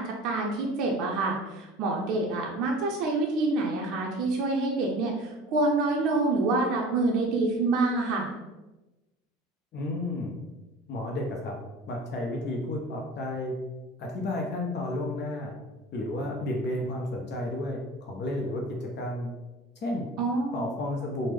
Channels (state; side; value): normal; both; correlation 0.41